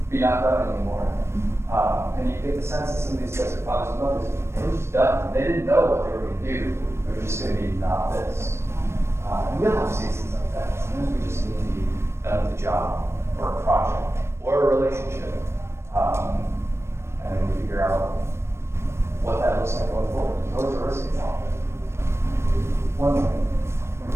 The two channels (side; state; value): left; late; 0.13 ms